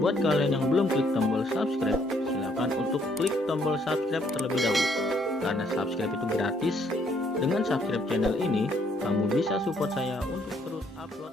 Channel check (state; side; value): normal; both; correlation 0.68